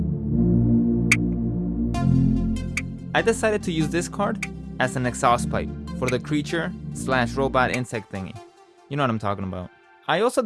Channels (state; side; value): identical; both; correlation 1.00